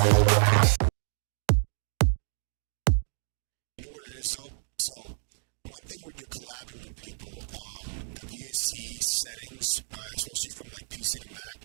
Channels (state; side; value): silent; left; digital silence